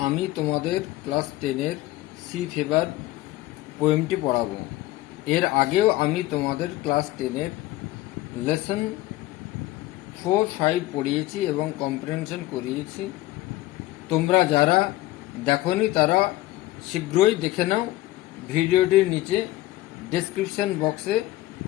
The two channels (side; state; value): right; quieter; 16.8 dB